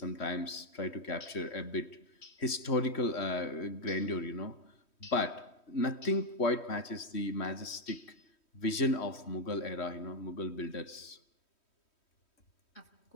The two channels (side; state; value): right; late; 3.1 ms